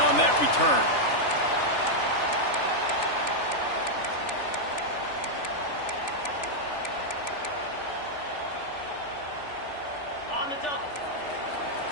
that return. On the double.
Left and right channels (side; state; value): right; late; 3.4 ms